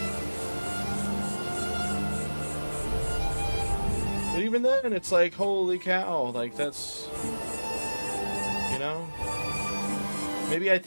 But even then, it's like, holy cow, like that's, you know, maybe I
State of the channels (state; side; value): inverted; both; correlation -1.00